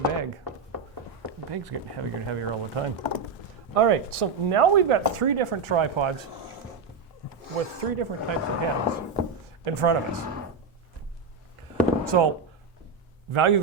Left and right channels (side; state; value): left; quieter; 4.8 dB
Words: bag. The bag's getting heavier and heavier all the time. All right, so now we've got 3 different tripods with 3 different types of heads in front of us. So, Value